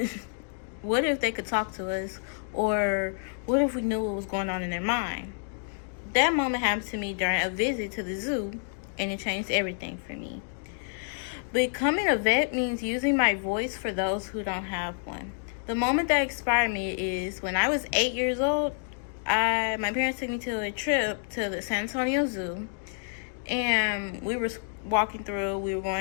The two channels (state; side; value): silent; right; digital silence